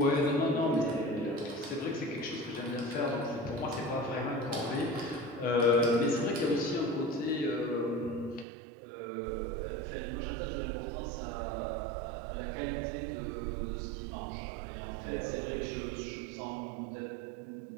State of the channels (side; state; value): left; drops out; at 8.5 s